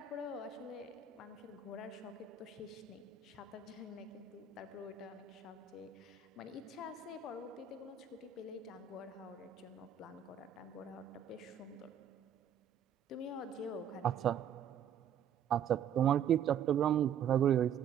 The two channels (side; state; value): left; quieter; 8.3 dB